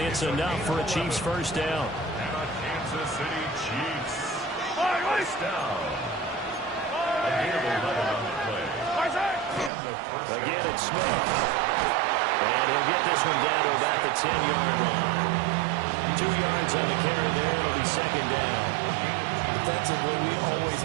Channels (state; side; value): drops out; left; at 9.7 s